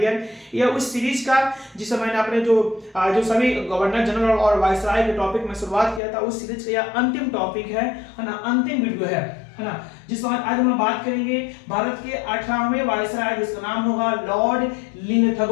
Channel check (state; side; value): drops out; right; at 6.0 s